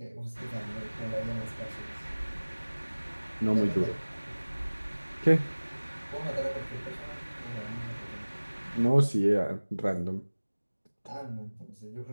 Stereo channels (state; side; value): inverted; both; correlation -1.00